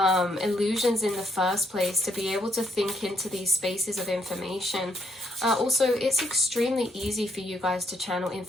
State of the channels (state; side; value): normal; both; correlation 0.73